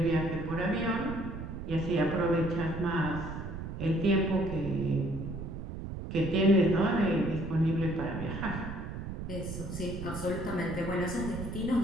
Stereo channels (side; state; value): right; noise; rumble, 7 dB below the sound